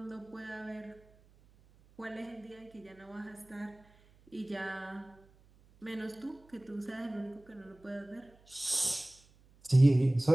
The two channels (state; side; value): noise; right; hum, 28 dB below the sound